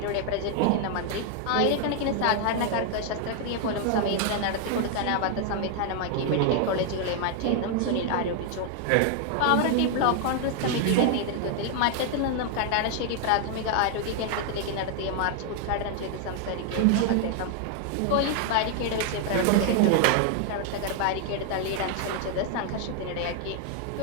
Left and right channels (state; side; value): different; both; correlation 0.00